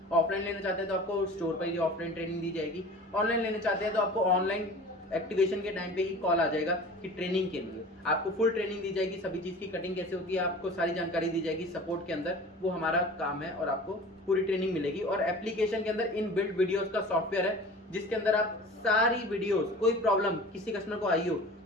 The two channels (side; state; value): both; normal; correlation 0.40